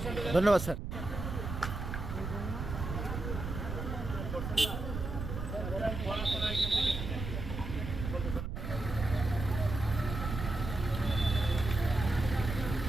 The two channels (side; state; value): right; noise; rumble, 5 dB below the sound